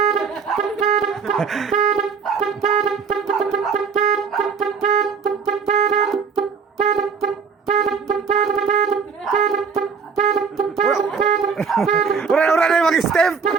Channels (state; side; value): quieter; left; 5.7 dB